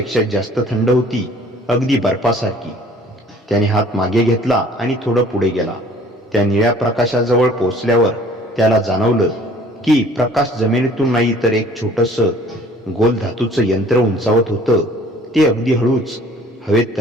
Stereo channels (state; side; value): normal; both; correlation 0.53